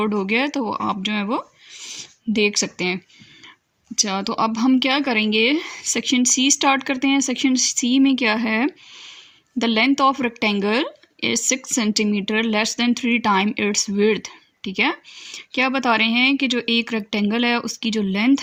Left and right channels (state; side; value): identical; both; correlation 1.00